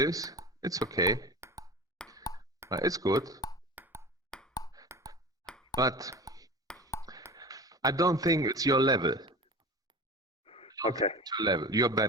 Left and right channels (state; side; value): normal; both; correlation 0.33